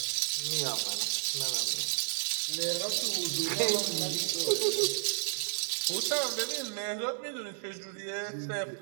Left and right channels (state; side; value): silent; left; digital silence